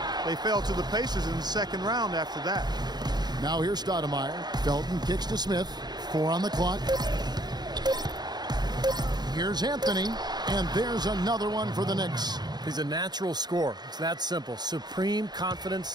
they fell to the Pacers in the second round after that. Now here's Stoudemire. Felton kicks to Smith. 4 on the clock. Here's Anthony, and there's another one for the Knicks. He's a natural scorer. It's that simple. Supreme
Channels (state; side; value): late; left; 0.20 ms